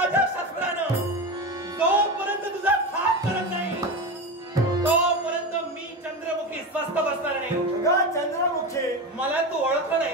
शस्त्रानं जोपर्यंत तुझा खाप करत नाही तोपर्यंत मी चंद्रमुखी स्वस्थ बसणार नाही. चंद्रमुखी मला तू ओळखलं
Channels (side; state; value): both; normal; correlation 0.22